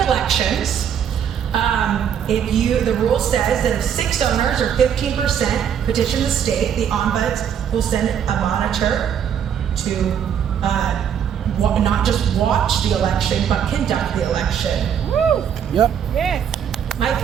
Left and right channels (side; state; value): left; quieter; 8.5 dB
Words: The rule says that if 6 owners or 15% petition the state, the ombuds will send a monitor to not just watch the election, but conduct the election. Woo! Yep. Yes. My